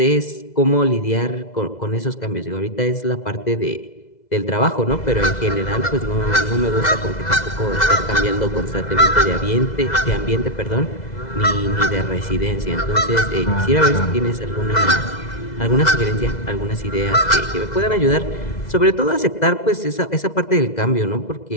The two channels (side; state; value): right; late; 2.0 ms